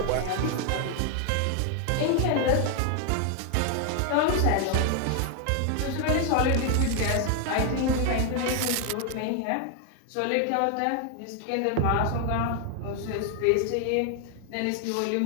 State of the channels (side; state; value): both; different; correlation 0.00